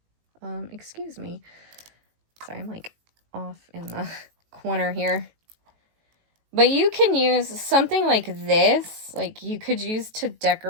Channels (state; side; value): late; left; 18 ms